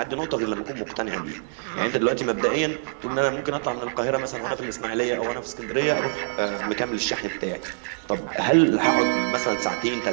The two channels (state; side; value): silent; left; 58 dB below the other